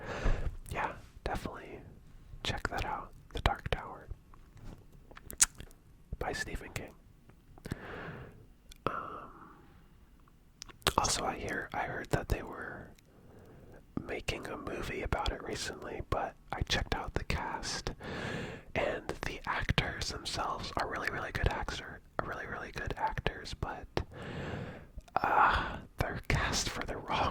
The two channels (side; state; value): both; identical; correlation 1.00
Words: yeah, definitely check that out. The Dark Tower by Stephen King. Also, I heard that they were making a movie about it recently, but I checked out the cast, and the actors themselves are really, really good actors, but they're cast for the